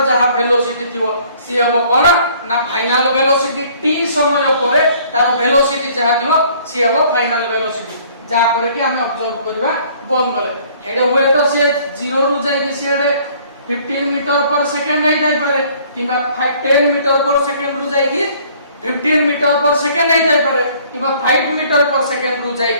जहा वेलोसिटी थिबो सी हबो कोन ना फाइनल वेलोसिटी. t समय परे तार वेलोसिटी जहा थिबो सी हबो फाइनल वेलोसिटी जहा पर कि हमें ऑब्जर्व करबा बंद कले. हेडे हुए तो से 0 रु जाय कि से 15 मीटर पर सेकंड हे जाय पारे किबा 10 मीटर पर सेकंड रु जाय कि 15 मीटर पर सेकंड हे जाय पारे किबा 5 मीटर पर सेकंड रु जाय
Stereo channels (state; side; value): inverted; both; correlation -0.57